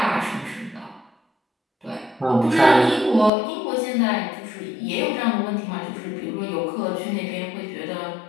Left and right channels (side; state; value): right; drops out; at 3.3 s